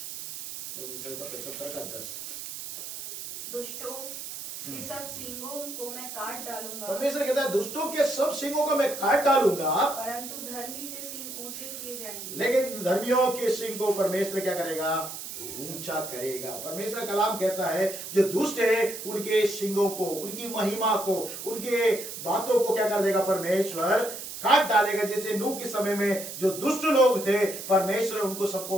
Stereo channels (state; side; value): noise; right; hiss, 9 dB below the sound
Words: भजन संगीता 75 का 10। दुष्टों के सब सींगों को मैं काट डालूंगा। परमेश्वर कहता है दुष्टों के सब सींगों को मैं काट डालूंगा, परंतु धर्मी के सींग ऊंचे किए जाएंगे। लेकिन धर्मियों के सींग को परमेश्वर क्या करेगा, ऊंचा करेगा। परमेश्वर कलाम कहता है जो दुष्ट है उनके सिंगों को, उनकी महिमा को, उनके बातों को क्या कर देगा, परमेश्वर काट डालेगा। जैसे नूह के समय में जो दुष्ट लोग थे परमेश्वर उनको